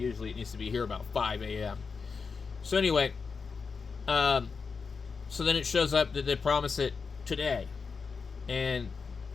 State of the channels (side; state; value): right; quieter; 5.1 dB